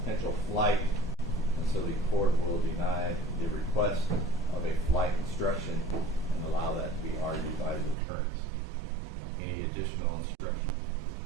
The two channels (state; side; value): drops out; left; at 8.0 s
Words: potential flight, and so the court will deny the request of a flight instruction and allow that to be argued by the attorneys. Any additional instruction?